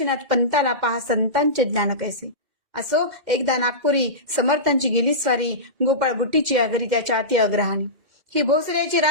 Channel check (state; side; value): late; left; 2.1 ms